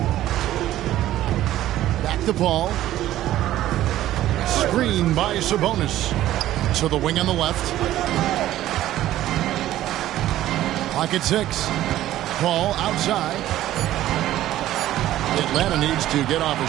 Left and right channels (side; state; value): left; quieter; 13.8 dB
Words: Back the ball. Screen by Sabonis. To the wing on the left. Pocket 6. Paul outside. Atlanta needs to get off a